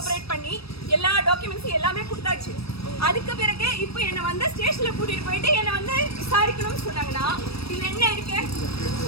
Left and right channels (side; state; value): right; late; 0.77 ms